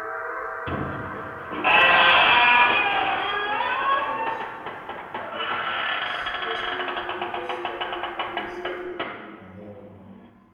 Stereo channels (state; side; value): identical; both; correlation 1.00